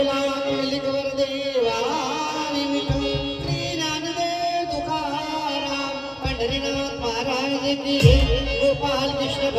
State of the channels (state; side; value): identical; both; correlation 1.00